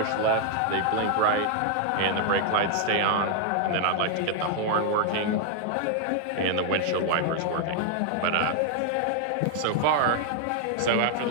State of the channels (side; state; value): both; different; correlation 0.00